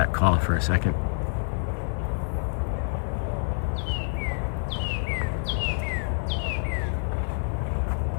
caw for a second.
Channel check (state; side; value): silent; right; digital silence